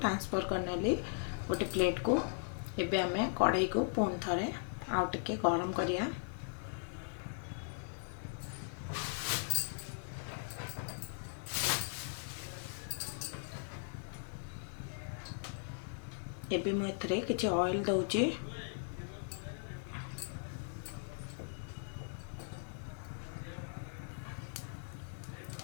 करनेली गोटे प्लेट को। एबे आमे कड़ाई को पुणी थरे आउ टिके गरम करिया। एबे मु एथरे किछि ऑयल दउचे।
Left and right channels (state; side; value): silent; right; 52 dB below the other